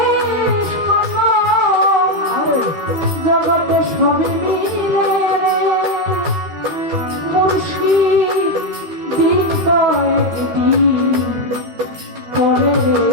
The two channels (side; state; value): left; late; 13 ms